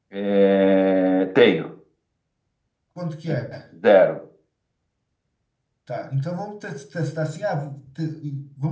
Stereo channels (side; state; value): both; identical; correlation 1.00